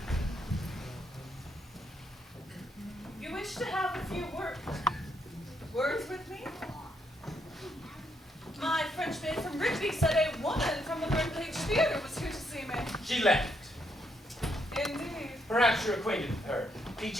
You wish to have a few words with me? My French maid from Rigby said a woman from the Birdcage Theater was here to see me. She left. Indeed. Perhaps you're acquainted with her.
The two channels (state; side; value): normal; both; correlation 0.75